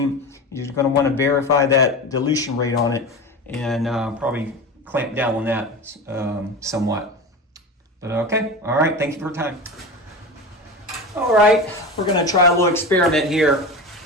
You're going to want to verify that dilution rate on it and probably clamp down on that somewhat. But okay, all right, thank you for your time. All right, we're going to try a little experiment here.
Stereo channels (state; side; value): normal; both; correlation 0.27